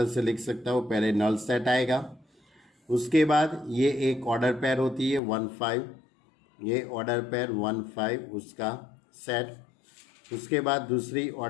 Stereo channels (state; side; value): drops out; right; at 5.2 s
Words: से लिख सकता हूँ। पहले नल सेट आएगा, उसके बाद ये एक ऑर्डर पेयर होती है 1 5, ये ऑर्डर पेयर 1 5 उसका सेट। उसके बाद दूसरी